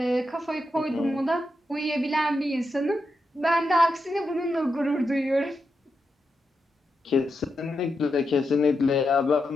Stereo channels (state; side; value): normal; both; correlation 0.86